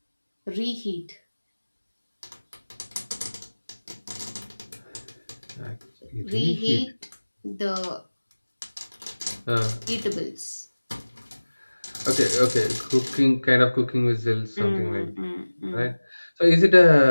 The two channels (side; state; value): both; inverted; correlation -1.00